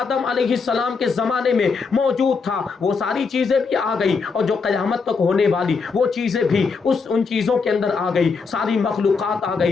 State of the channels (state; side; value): quieter; right; 5.0 dB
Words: علیہ السلام کے زمانے میں موجود تھا وہ ساری چیزیں بھی آ گئی، اور جو قیامت تک ہونے والی وہ چیزیں بھی ان چیزوں کے اندر آ گئی، ساری مخلوقات آ